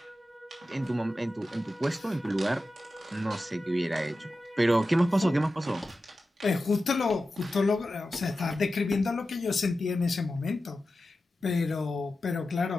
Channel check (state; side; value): normal; both; correlation 0.93